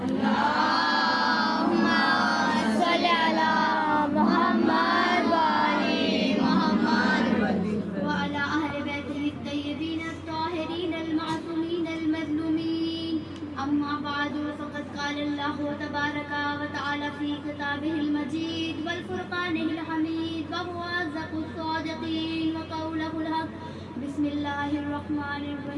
اللهم صل على محمد وآل محمد وعلى أهل بيته الطيبين الطاهرين المعصومين المظلومين. أما بعد فقد قال الله تبارك وتعالى في كتابه المجيد والفرقانه الحميد وهو أصدق الصادقين وقوله الحق. بسم الله الرحمن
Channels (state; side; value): identical; both; correlation 1.00